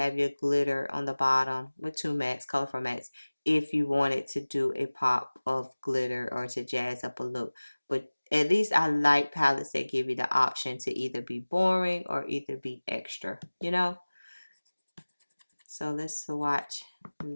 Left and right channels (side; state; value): both; inverted; correlation -1.00